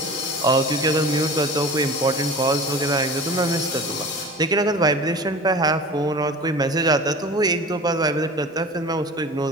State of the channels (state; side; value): normal; both; correlation 0.38